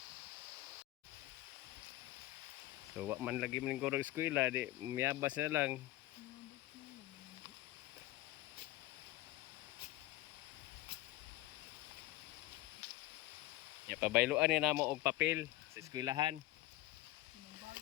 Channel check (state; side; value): quieter; right; 17.3 dB